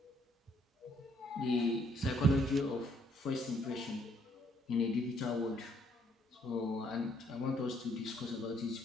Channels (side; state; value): both; normal; correlation 0.68